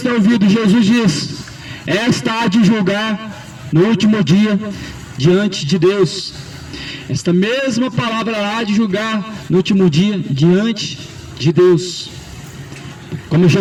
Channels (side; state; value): both; identical; correlation 1.00